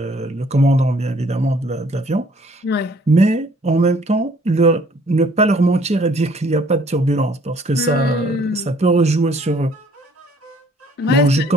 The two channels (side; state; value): both; normal; correlation 0.60